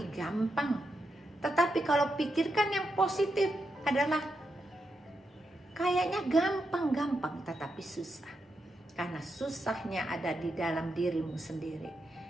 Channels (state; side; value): normal; both; correlation 0.84